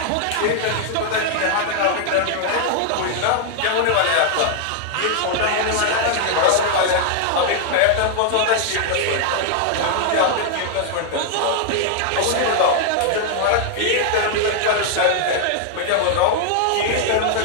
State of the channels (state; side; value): different; both; correlation 0.00